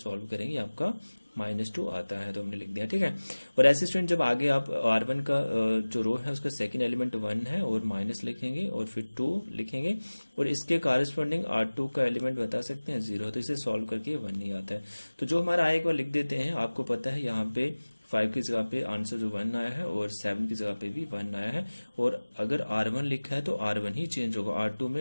करेंगे आपका -2 आता है, तो हमने लिख दिया। ठीक है, और ऐसे स्टूडेंट जब आगे आप R1 का जो रो है उसका सेकंड एलिमेंट 1 है, और माइनस लिखेंगे, और फिर 2 लिखेंगे, और इसके कॉरेस्पॉन्डिंग R2 का एलिमेंट बता सकते हैं 0, तो इसे सॉल्व करके 1 नहीं आता है। तो जो हमारा आएगा लिख देते हैं। आपको पता है यहाँ पे 5 की जगह पे आंसर जो 1 आया है, और 7 की जगह पे भी 1 आया है। और अगर R1 लिखा है तो R1 ही चेंज होगा, R2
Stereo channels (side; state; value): both; inverted; correlation -1.00